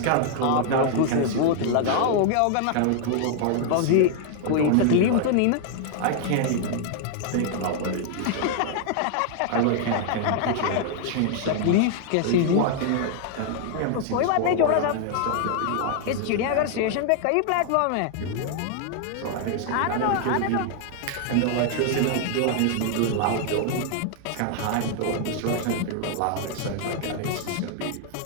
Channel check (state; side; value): different; both; correlation 0.00